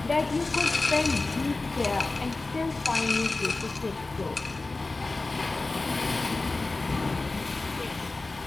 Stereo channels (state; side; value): quieter; right; 3.4 dB